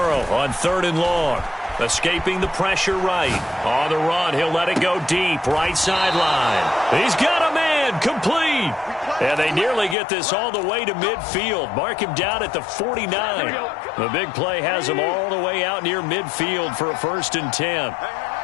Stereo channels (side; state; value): right; drops out; at 10.0 s